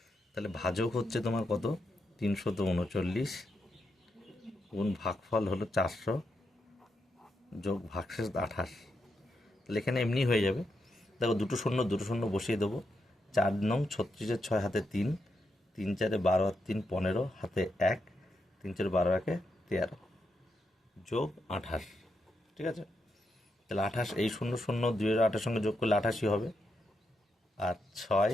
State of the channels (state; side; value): normal; both; correlation 0.83